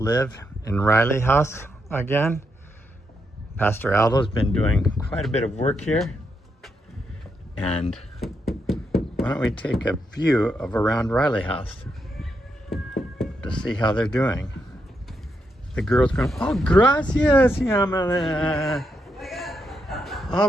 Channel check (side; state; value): both; normal; correlation 0.81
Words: in RileyHouse again, Pastor Aldo's been doing quite a bit of work here. And why don't we take a view of around RileyHouse to see how they're doing. The girl's going, oh, gracias, Yamala. Oh,